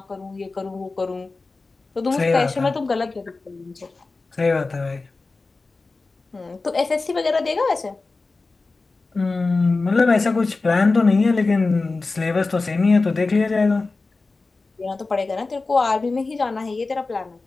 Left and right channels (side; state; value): right; quieter; 3.7 dB